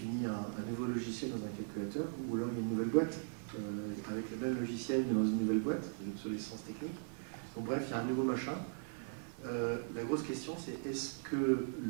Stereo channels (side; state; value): left; silent; 52 dB below the other